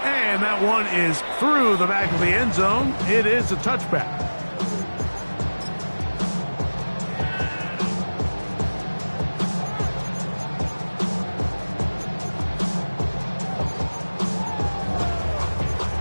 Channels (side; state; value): both; inverted; correlation -1.00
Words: And that one is through the back of the end zone. It is a touchback.